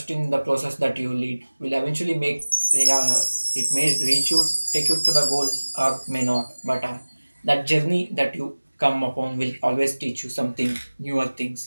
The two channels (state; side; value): inverted; both; correlation -1.00